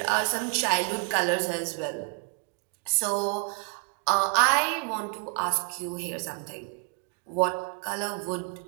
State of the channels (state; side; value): quieter; left; 38.9 dB